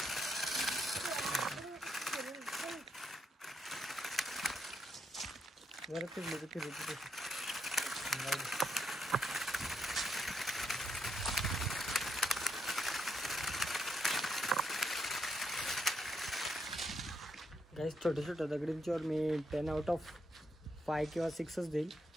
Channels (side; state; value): both; normal; correlation 0.79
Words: गाईस छोट्या छोट्या दगडींच्यावर मी 10 आउट ऑफ 5 किंवा 6च देईल,